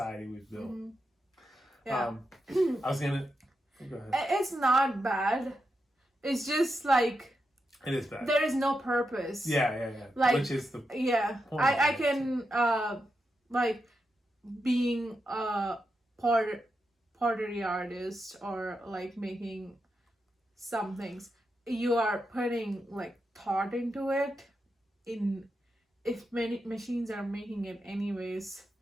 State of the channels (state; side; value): normal; both; correlation 0.87